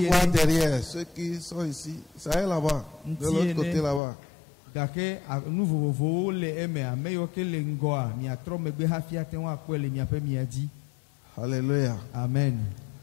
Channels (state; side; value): drops out; right; at 4.0 s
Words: voir derrière ceux qui sont ici. Ça est là-bas, de l'autre côté là-bas. Alléluia. Amen.